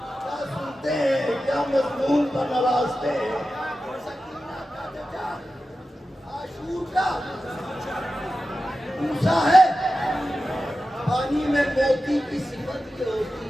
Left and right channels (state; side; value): normal; both; correlation 0.93